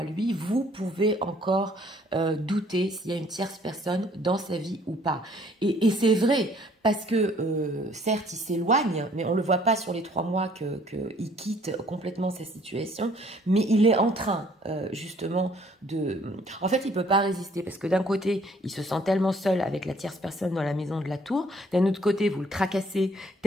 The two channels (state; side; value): normal; both; correlation 0.60